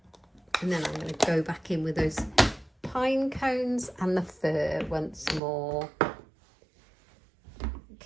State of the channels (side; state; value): left; drops out; at 5.4 s